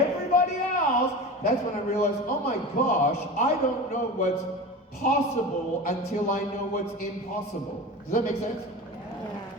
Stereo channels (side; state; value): both; normal; correlation 0.30